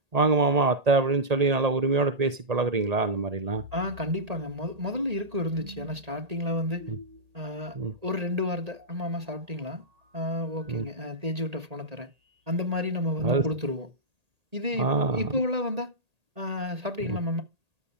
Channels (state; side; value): late; left; 1.8 ms